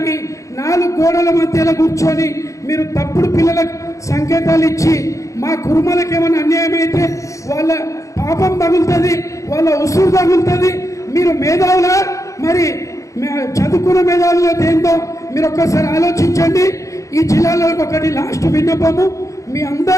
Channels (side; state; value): right; late; 0.15 ms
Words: 4 గోడల మధ్యలో కూర్చొని మీరు తప్పుడు పిల్లలకు సంకేతాలు ఇచ్చి మా కురుమలకు ఏమైనా అన్యాయం అయితే వాళ్ళ పాపం తగులుతుంది, వాళ్ళ ఉసురు తగులుతుంది. మీరు మేధావులా? మరి చదువుకున్న మేధావుల దేంతో మీరు ఒక్కసారి ఆలోచించండి. ఈ జిల్లాలో ఒకటి లాస్ట్ విన్నపము, మీ